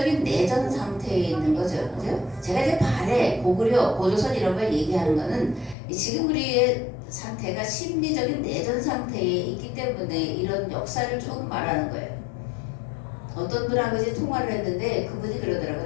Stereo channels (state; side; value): drops out; right; at 5.8 s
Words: 내전 상태에 있는 거죠. 그죠? 제가 이제 발해, 고구려, 고조선 이런 걸 얘기하는 거는 지금 우리의 상태가 심리적인 내전 상태에 있기 때문에 이런 역사를 조금 말하는 거예요. 어떤 분하고 이제 통화를 했는데 그분이